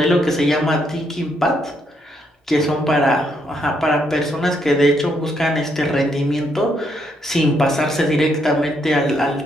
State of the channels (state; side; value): normal; both; correlation 0.75